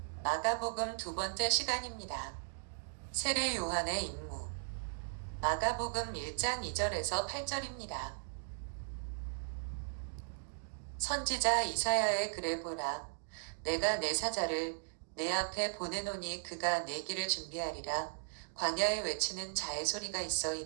마가복음 두 번째 시간입니다. 세례 요한의 임무. 마가복음 1장 2절에서 8절입니다. 선지자 이사야의 글을 보라. 내가 내 사자를 내 앞에 보내노니 그가 내 길을 준비하리라. 광야에 외치는 자의 소리가 있어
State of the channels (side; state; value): left; silent; digital silence